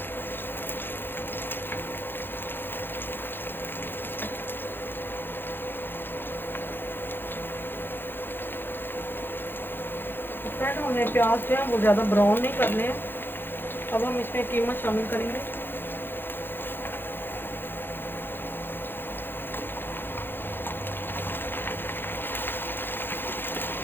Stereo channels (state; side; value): late; right; 0.10 ms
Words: फ्रेंड, हमें प्याज जो है वो ज़्यादा ब्राउन नहीं करने हैं। अब हम इसमें कीमा शामिल करेंगे।